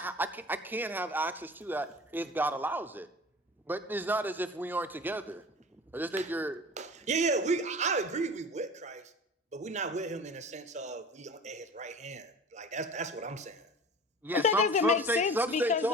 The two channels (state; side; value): normal; both; correlation 0.39